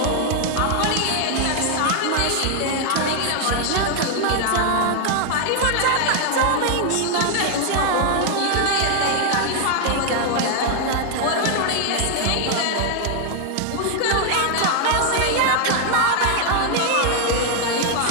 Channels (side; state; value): both; different; correlation 0.00